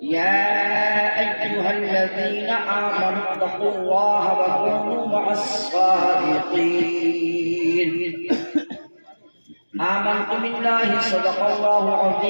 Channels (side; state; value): both; inverted; correlation -1.00